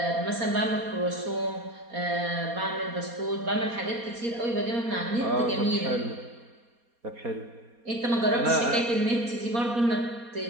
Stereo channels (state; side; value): late; left; 4.2 ms